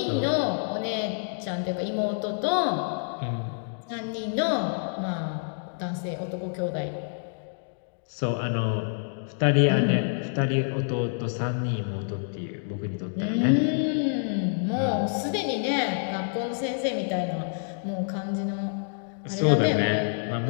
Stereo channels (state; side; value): silent; right; digital silence